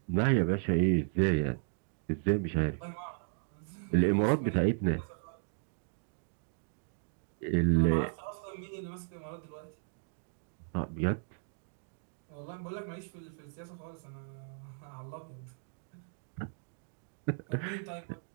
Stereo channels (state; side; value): silent; left; digital silence